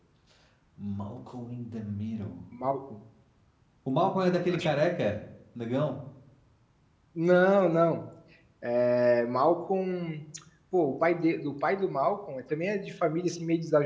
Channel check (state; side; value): identical; both; correlation 1.00